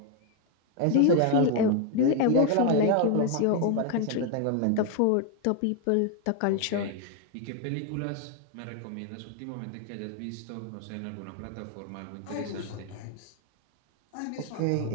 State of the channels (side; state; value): both; different; correlation 0.01